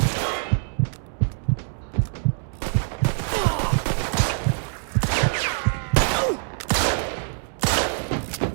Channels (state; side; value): silent; left; 63 dB below the other